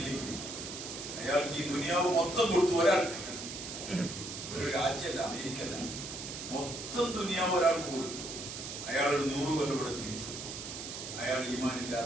അയാൾക്ക് ഈ ദുനിയാവ് മൊത്തം കൊടുത്തു. ഒരാൾക്ക്, ഒരു രാജ്യമല്ല, അമേരിക്കല്ല, മൊത്തം ദുനിയാവ് ഒരാൾക്ക് കൊടുത്തു. അയാൾ ഒരു 100 കൊല്ലം ഇവിടെ ജീവിച്ചു. അയാൾ ഈമാൻ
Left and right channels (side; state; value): right; noise; hiss, 8 dB below the sound